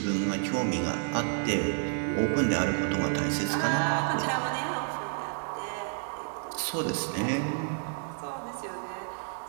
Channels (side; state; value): left; silent; digital silence